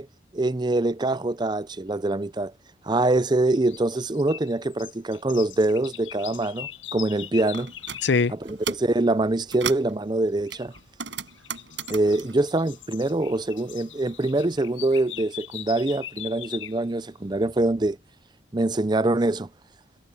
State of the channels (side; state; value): both; normal; correlation 0.68